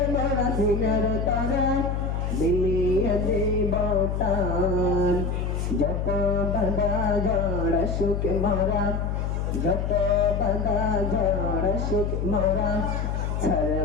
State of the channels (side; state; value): left; noise; hum, 1 dB below the sound